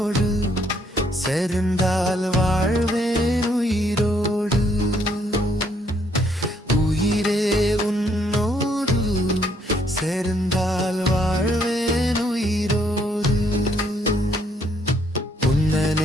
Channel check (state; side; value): normal; both; correlation 0.69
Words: சேர்ந்தால் வாழ்வேன் உயிரோடு. உயிரே உன்னோடு சேர்ந்தால் வாழ்வேன் உயிரோடு. உன்னை